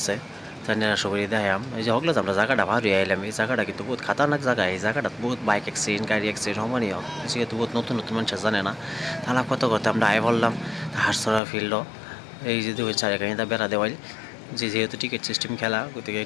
তাই নিরা সবই দেখাম। এই যে হকলে আমরা জায়গাটা ভালো আইলাম, এই জায়গাটা কিন্তু বহুত খাতারনাক জায়গা। এই জায়গাটা বহুত বাইক অ্যাক্সিডেন্ট, গাড়ি অ্যাক্সিডেন্ট সমানই হোক, যেহেতু বহুত নতুন নতুন মানুষ জানে না। তাহলে কত করতে আমরা আয় বললাম হারসরা ফিল্ড। এই যে দুই চারিখানিটা বেড়া দেওয়াই, যেহেতু টিকিট সিস্টেম খেলা, গতিকে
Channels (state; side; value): drops out; right; at 11.4 s